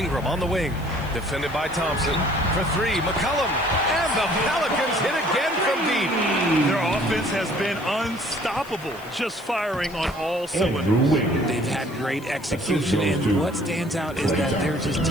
on the wing. Defended by Thompson. For 3, McCollum. And the Pelicans hit again from deep. Their offense has been unstoppable, just firing on all cylinders. They've had great execution, and what stands out is that they're just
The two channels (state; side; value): noise; left; hiss, 23 dB below the sound